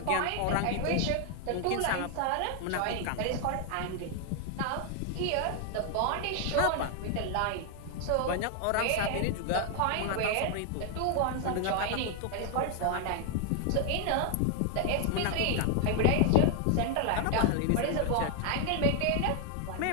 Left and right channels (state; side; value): different; both; correlation 0.00